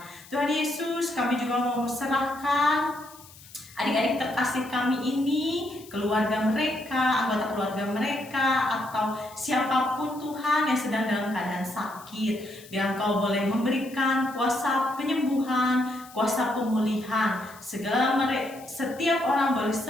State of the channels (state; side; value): noise; left; hiss, 21 dB below the sound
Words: Tuhan Yesus, kami juga mau serahkan adik-adik terkasih kami ini, keluarga mereka, anggota keluarga mereka, atau siapapun Tuhan yang sedang dalam keadaan sakit. Biar Engkau boleh memberikan kuasa penyembuhan, kuasa pemulihan. Setiap orang boleh